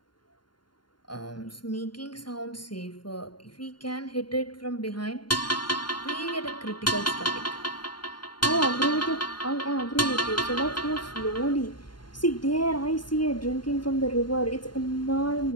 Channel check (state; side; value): late; right; 0.71 ms